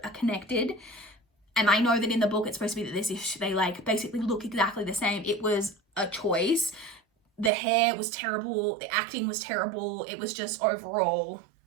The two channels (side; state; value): left; drops out; at 7.5 s